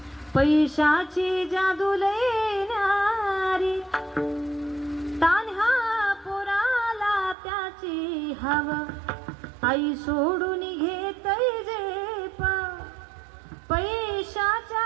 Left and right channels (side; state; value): left; drops out; at 7.4 s